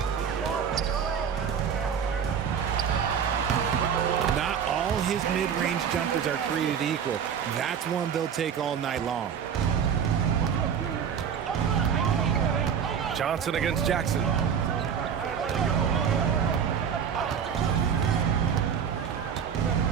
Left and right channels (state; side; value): quieter; left; 7.6 dB